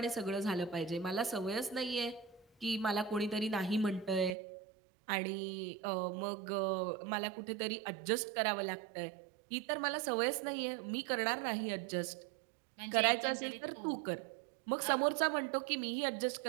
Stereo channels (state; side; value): drops out; left; at 4.4 s